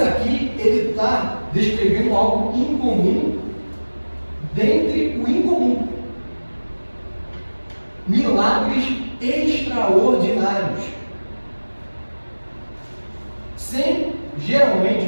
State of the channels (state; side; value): inverted; both; correlation -1.00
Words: aqui, ele está descrevendo algo incomum dentre o incomum. Milagres extraordinários. Geralmente,